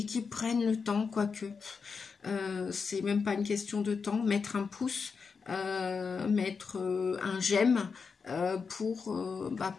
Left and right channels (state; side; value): quieter; right; 5.3 dB